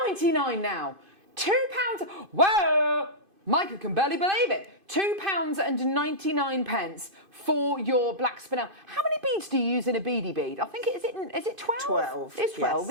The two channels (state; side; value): late; left; 2.5 ms